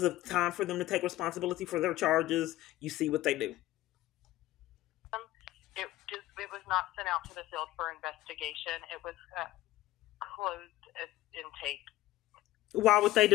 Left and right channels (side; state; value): right; quieter; 16.0 dB